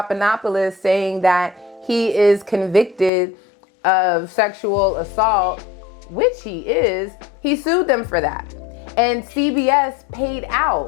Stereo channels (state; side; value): drops out; right; at 3.1 s